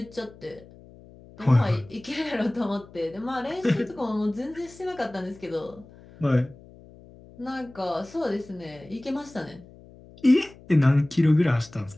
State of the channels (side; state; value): left; noise; hum, 22 dB below the sound